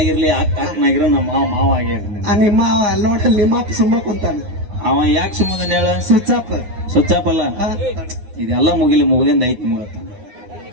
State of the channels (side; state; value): left; late; 9.7 ms